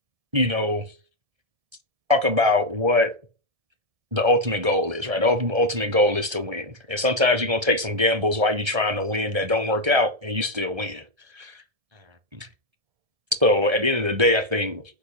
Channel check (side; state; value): left; late; 1.3 ms